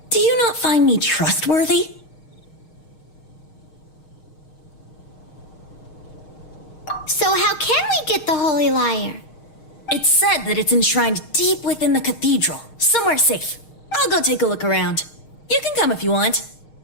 Do you not find me trustworthy? So how can we get the Holy Lyre? It's said that it's enshrined deep within the cathedral, somewhere safe. I'll go take a look around. You can come if you want.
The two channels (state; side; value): late; right; 6.4 ms